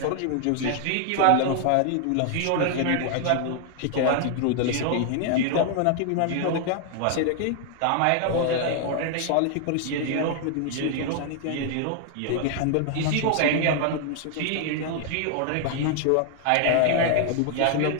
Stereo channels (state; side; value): different; both; correlation 0.00